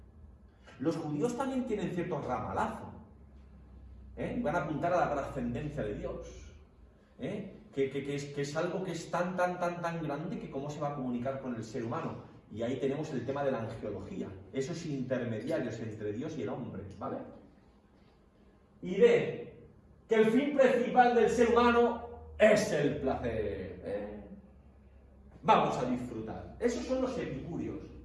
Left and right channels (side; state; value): both; identical; correlation 1.00